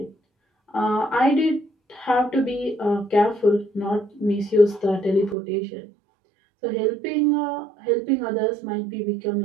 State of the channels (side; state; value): left; drops out; at 5.4 s